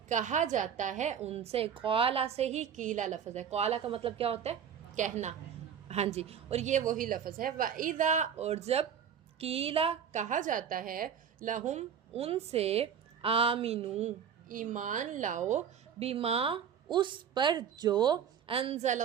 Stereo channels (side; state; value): left; quieter; 8.1 dB